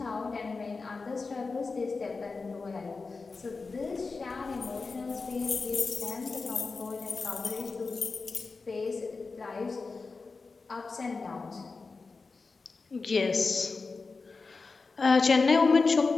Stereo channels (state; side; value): quieter; right; 4.2 dB